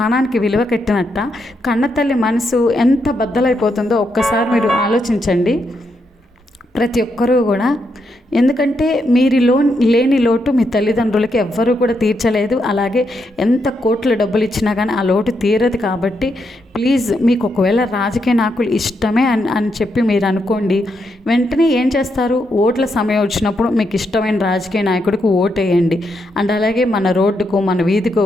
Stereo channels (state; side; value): normal; both; correlation 0.80